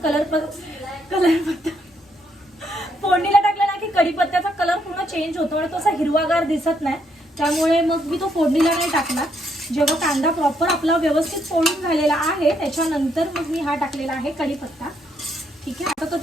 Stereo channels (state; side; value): normal; both; correlation 0.75